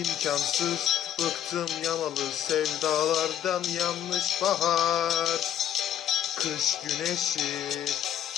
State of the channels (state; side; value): quieter; right; 10.6 dB